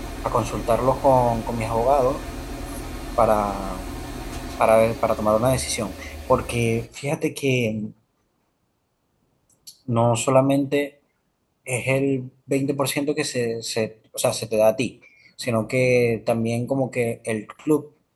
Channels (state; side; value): identical; both; correlation 1.00